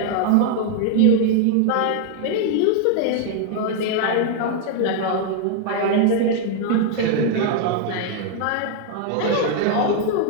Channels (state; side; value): different; both; correlation 0.00